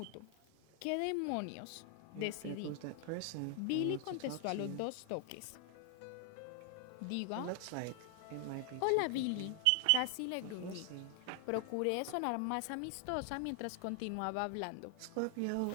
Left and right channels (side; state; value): both; different; correlation 0.00